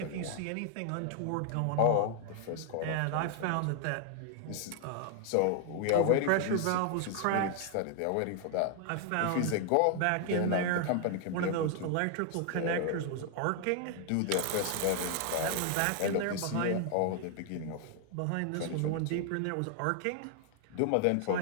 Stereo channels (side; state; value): both; different; correlation 0.00